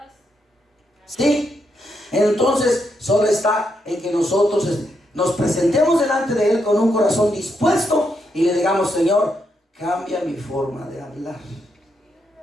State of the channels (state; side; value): normal; both; correlation 0.80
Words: Sí, entonces solo está en que nosotros nos presentemos delante de Él con un corazón dispuesto y le digamos: Señor, cambia mi forma de hablar.